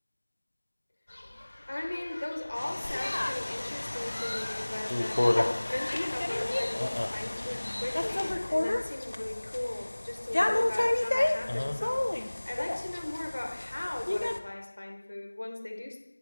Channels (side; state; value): both; inverted; correlation -1.00